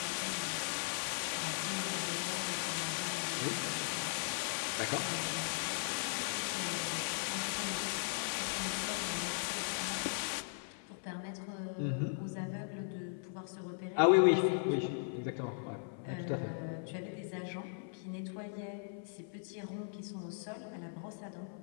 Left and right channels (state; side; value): silent; right; 52 dB below the other